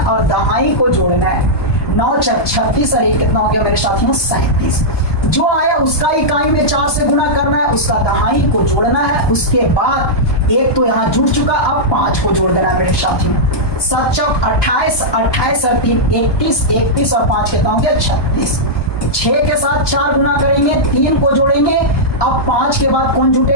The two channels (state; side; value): late; right; 1.2 ms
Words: और दहाई को जोड़ना है। 9 चौक 36 और 1 कितना हो गया मेरे साथियों? 37। जो आया उसका इकाई में 4 से गुना करना है, उसका दहाई को जोड़ना है। उसके बाद 1 तो यहाँ जुड़ चुका, अब 5 को जोड़ देना है मेरे साथियों। 7 चौक 28, 28 और 3 31, 31 और 5 कितना हो गया? 36। 6 के साथ 4 गुना करेंगे, 3 को जोड़ेंगे, अब 5 के बाद कौन